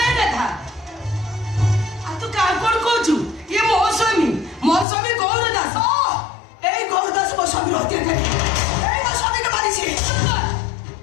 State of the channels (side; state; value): right; drops out; at 4.9 s